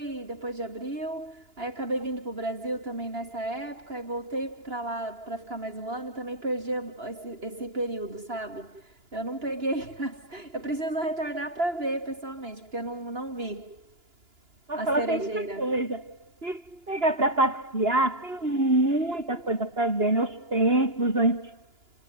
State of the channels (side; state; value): left; late; 2.9 ms